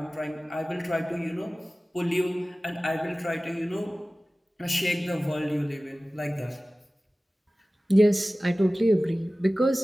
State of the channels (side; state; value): both; normal; correlation 0.97